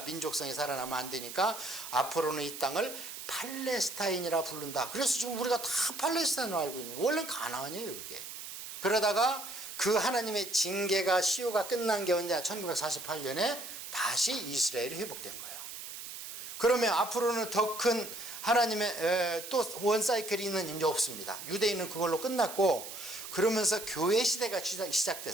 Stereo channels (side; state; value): right; noise; hiss, 10 dB below the sound